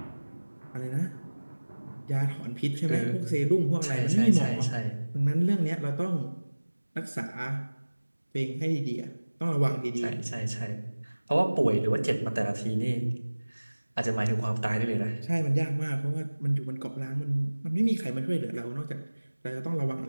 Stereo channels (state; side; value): inverted; both; correlation -1.00